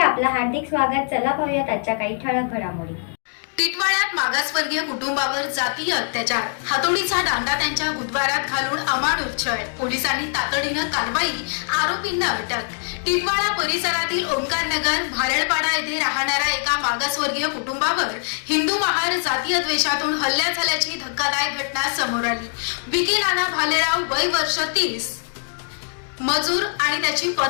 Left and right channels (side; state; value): right; silent; 61 dB below the other